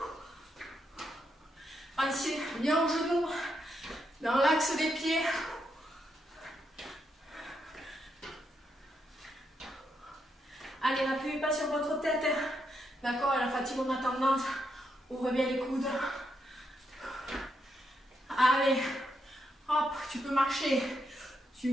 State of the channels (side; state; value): both; normal; correlation 0.80